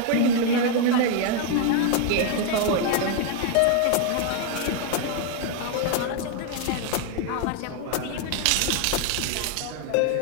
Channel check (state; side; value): different; both; correlation 0.01